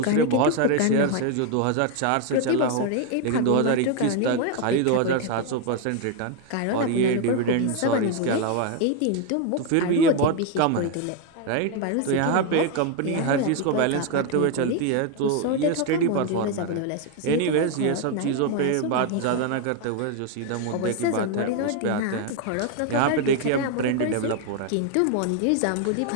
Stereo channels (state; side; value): different; both; correlation 0.01